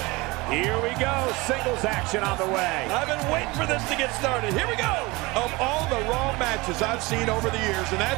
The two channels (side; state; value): left; quieter; 23.3 dB